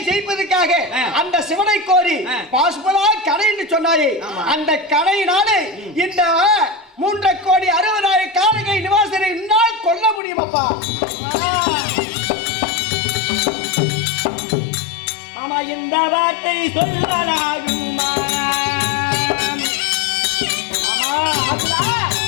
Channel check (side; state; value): right; drops out; at 10.2 s